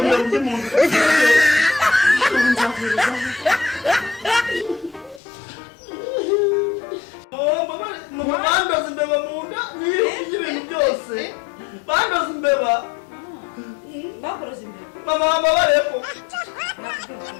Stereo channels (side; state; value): right; drops out; at 5.2 s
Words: mbere undi muntu nzavuriza bandoze imbeba mu nda n'ibintu byose bandoze imbeba bakuroze imbere mama babareko